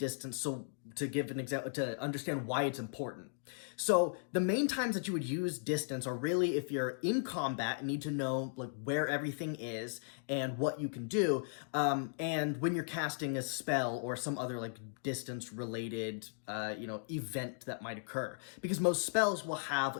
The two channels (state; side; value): silent; right; digital silence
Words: so to give an example, to understand why it's important. So the main times that you would use distance are really if you're in combat and need to know like where everything is and what you can do, and when you're casting a spell or some other like distance related event that might occur, because most spells will